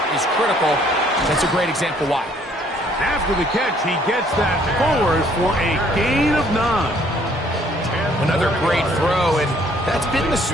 is critical. That's a great example why. After the catch, he gets that forward for a gain of 9. Another great throw, and that's been the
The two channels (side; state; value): both; normal; correlation 0.62